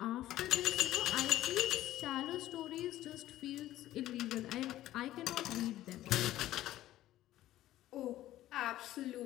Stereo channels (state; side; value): quieter; right; 14.3 dB